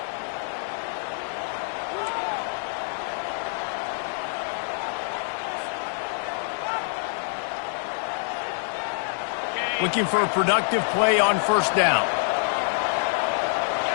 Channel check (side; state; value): right; silent; digital silence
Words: Looking for a productive play on first down.